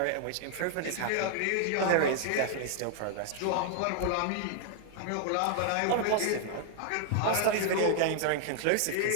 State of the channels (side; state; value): both; different; correlation 0.00